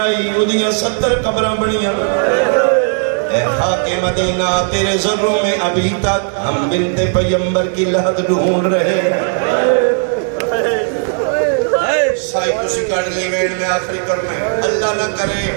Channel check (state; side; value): silent; left; 57 dB below the other